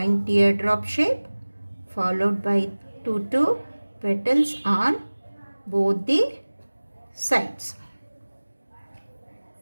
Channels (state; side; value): inverted; both; correlation -1.00